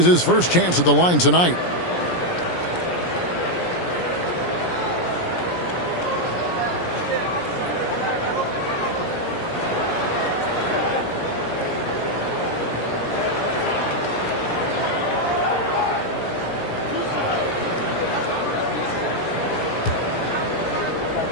his first chance at the line tonight.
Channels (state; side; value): late; right; 17 ms